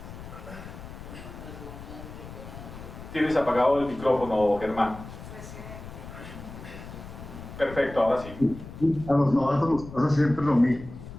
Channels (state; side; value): noise; left; rumble, 13 dB below the sound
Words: Tienes apagado el micrófono, Germán. Perfecto, ahora sí. A los novatos nos pasa siempre lo mismo.